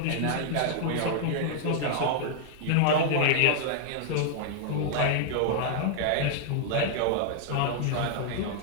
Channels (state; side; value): different; both; correlation -0.01